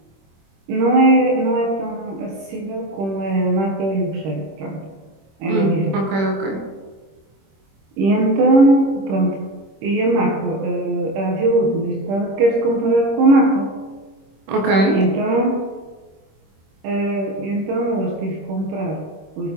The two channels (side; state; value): left; late; 26 ms